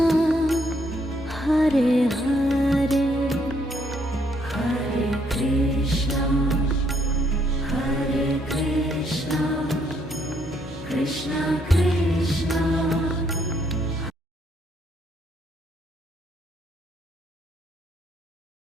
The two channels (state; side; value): normal; both; correlation 0.71